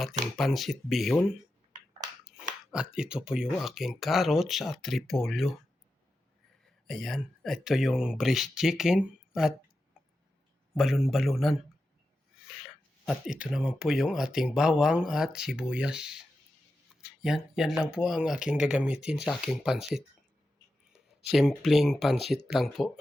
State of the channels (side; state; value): both; normal; correlation 0.90